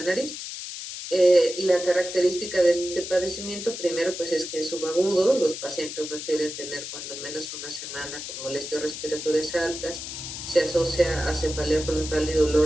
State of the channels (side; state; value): left; noise; hiss, 8 dB below the sound